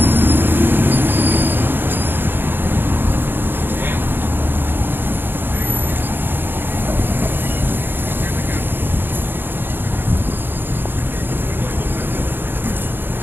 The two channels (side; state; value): left; late; 0.099 ms